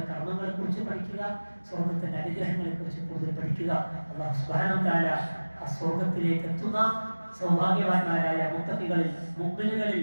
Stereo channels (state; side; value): inverted; both; correlation -1.00